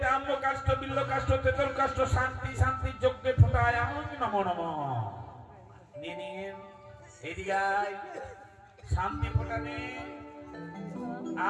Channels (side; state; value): both; identical; correlation 1.00